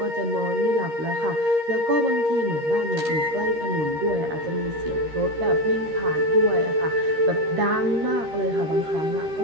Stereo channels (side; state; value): left; late; 13 ms